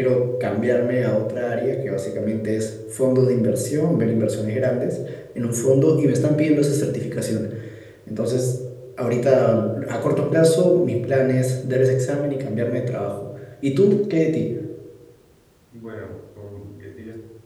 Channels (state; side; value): identical; both; correlation 1.00